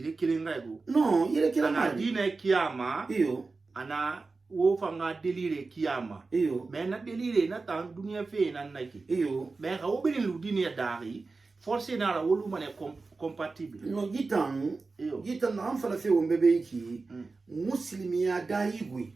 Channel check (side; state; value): left; quieter; 3.9 dB